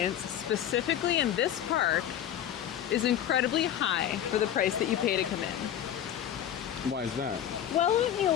specifically in this park, is incredibly high for the price that you pay to come in. Why is that? Well, let me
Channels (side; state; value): right; quieter; 10.4 dB